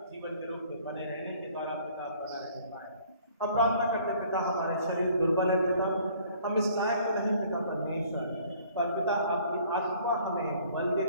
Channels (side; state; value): both; inverted; correlation -0.56